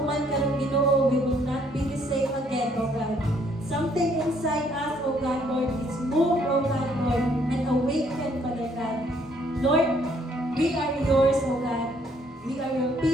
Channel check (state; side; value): normal; both; correlation 0.66